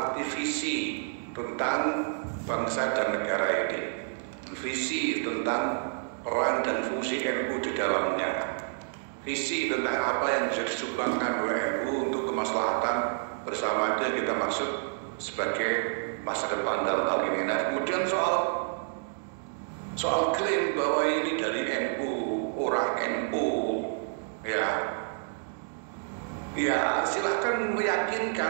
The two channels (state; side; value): silent; left; digital silence